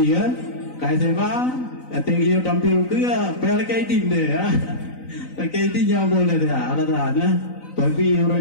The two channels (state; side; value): late; right; 3.9 ms